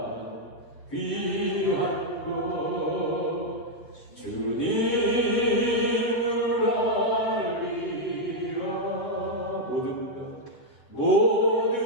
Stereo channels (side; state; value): right; late; 8.0 ms